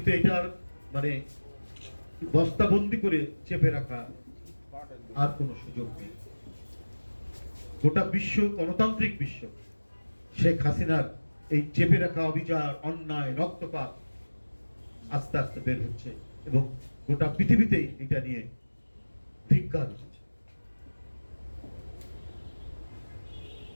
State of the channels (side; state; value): both; inverted; correlation -1.00